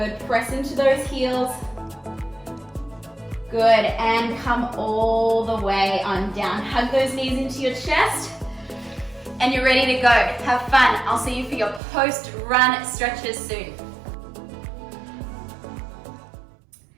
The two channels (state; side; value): drops out; left; at 11.8 s